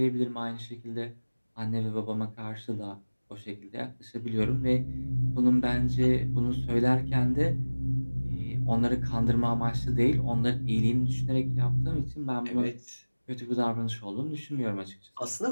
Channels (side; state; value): both; inverted; correlation -1.00